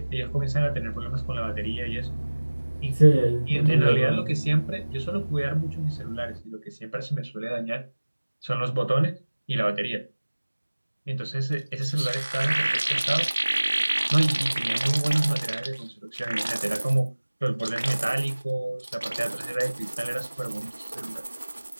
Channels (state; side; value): inverted; both; correlation -1.00